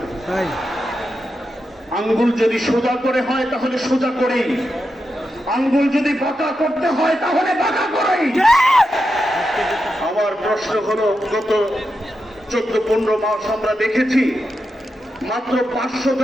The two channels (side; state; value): both; normal; correlation 0.88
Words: তাই। আঙ্গুল যদি সোজা করে হয় তাহলে সোজা করেই, আঙ্গুল যদি বাঁকা করতে হয় তাহলে বাঁকা করেই। আমার প্রশ্ন হলো, গত 14-15 মাস আমরা দেখেছি মাত্র 500